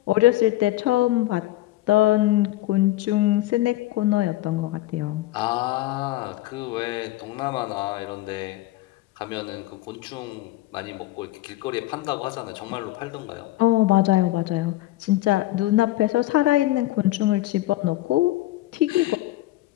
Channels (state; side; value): quieter; right; 16.5 dB